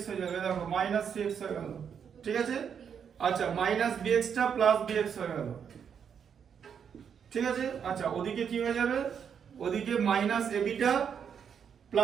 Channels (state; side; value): quieter; left; 7.5 dB